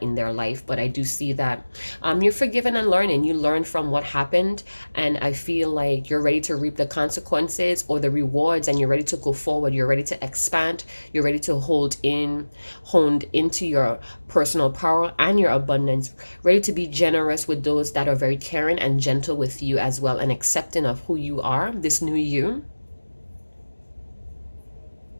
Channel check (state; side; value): inverted; both; correlation -1.00